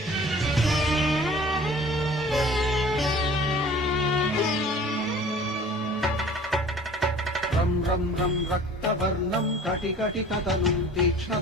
रं रं रं रक्तवर्णं कटिकटिततनुं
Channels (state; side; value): normal; both; correlation 0.46